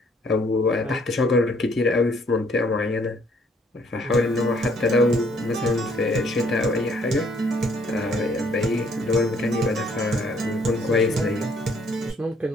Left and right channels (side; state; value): both; normal; correlation 0.64